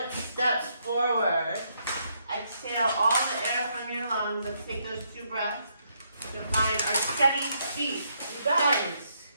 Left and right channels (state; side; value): inverted; both; correlation -0.74